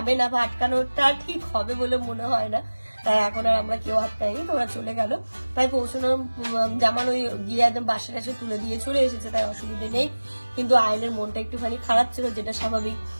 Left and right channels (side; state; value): both; inverted; correlation -1.00